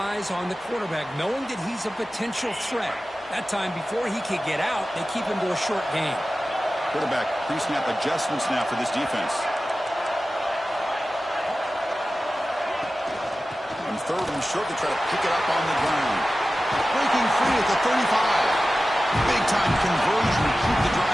on the quarterback, knowing that he's a potential threat. That time, before he could get out, they keep him to a short gain. Quarterback pre-snap adjustments now for this defense. On 3rd and short, they try to pick it up on the ground. Breaking free at the 35. Big-time conversion to keep the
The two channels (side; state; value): both; normal; correlation 0.95